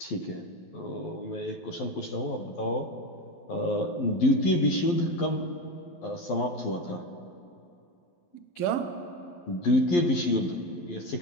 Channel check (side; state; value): right; late; 11 ms